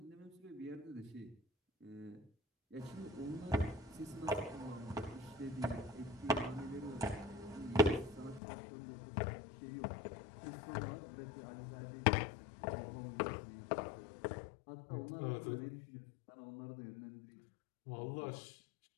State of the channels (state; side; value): drops out; right; at 8.4 s